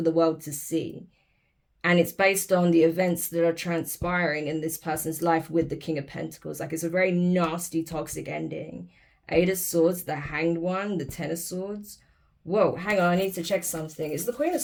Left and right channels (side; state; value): both; identical; correlation 1.00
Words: the world to see. And it's based on the events that are transpiring in this person's life with the King of Pentacles. Like, it's a very nasty, toxic ending. Eight of Swords, the Hanged One, the Ten of Swords. Whoa, hang on, I need to check something. Is the Queen of